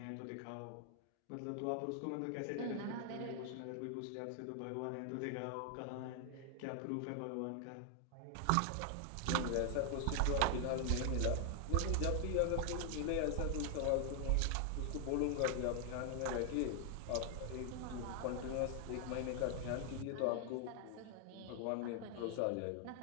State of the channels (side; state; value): both; different; correlation 0.00